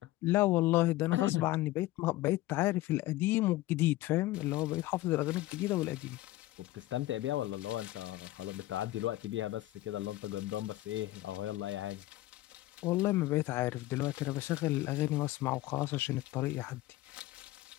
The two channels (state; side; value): quieter; right; 17.1 dB